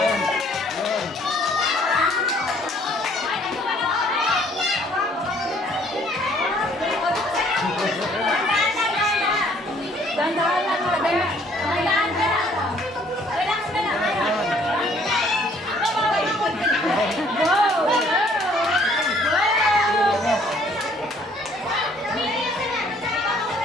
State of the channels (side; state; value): both; normal; correlation 0.61